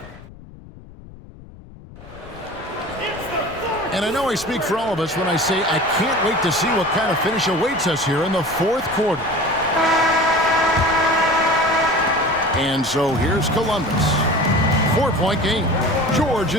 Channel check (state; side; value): noise; left; rumble, 19 dB below the sound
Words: And I know I speak for all of us when I say I can't wait to see what kind of finish awaits us here in the fourth quarter. And so here's Columbus. 4-point game. George